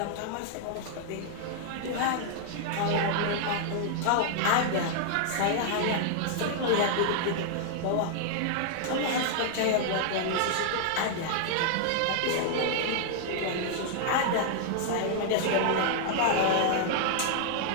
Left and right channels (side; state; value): both; different; correlation 0.00